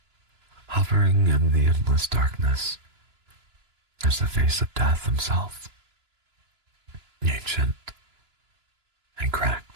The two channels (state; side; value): late; left; 2.9 ms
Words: Hovering in the endless darkness is the face of death himself, ancient and